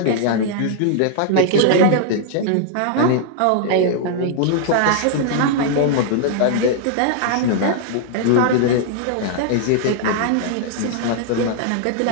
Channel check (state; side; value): different; both; correlation -0.01